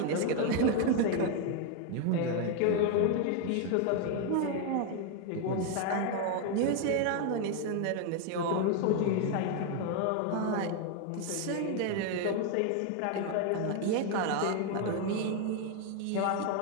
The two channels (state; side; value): different; both; correlation 0.00